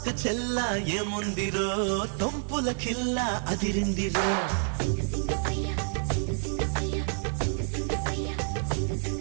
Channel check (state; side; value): silent; left; 59 dB below the other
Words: చెల్ల ఏముందిరో సొంపుల కిల్ల అదిరిందిరో